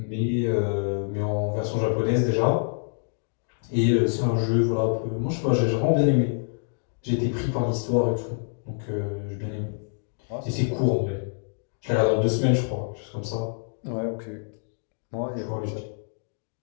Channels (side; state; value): right; silent; digital silence